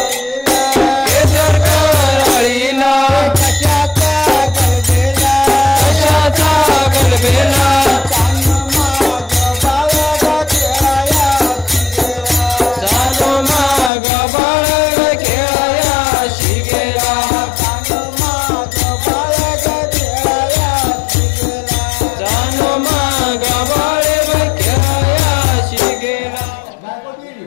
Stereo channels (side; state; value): right; drops out; at 13.9 s